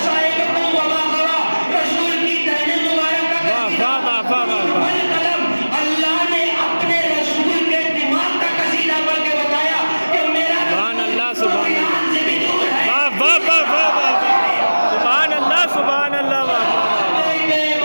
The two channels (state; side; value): inverted; both; correlation -1.00